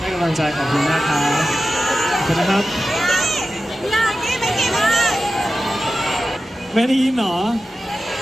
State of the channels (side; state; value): both; normal; correlation 0.94